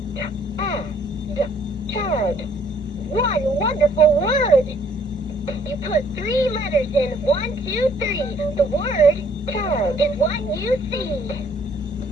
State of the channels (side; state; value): both; normal; correlation 0.62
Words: Tad. One wonderful word! You put 3 letters in 1, 2, 3. The word tad is what you see.